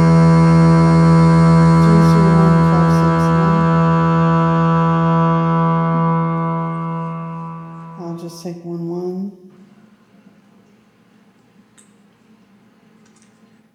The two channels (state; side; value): identical; both; correlation 1.00